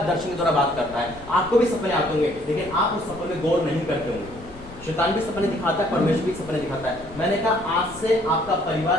दर्शन के द्वारा बात करता है। आपको भी सपने आते होंगे लेकिन आप उस सपने में गौर नहीं करते होंगे। शैतान भी सपने दिखाता है, परमेश्वर भी सपने दिखाता है। मैंने कहा आज से आपका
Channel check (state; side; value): noise; left; rumble, 18 dB below the sound